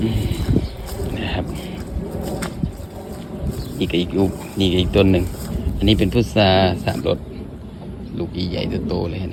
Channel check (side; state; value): both; identical; correlation 1.00